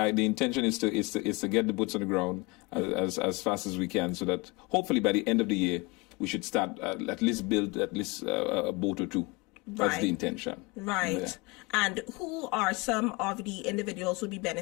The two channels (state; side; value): quieter; right; 26.0 dB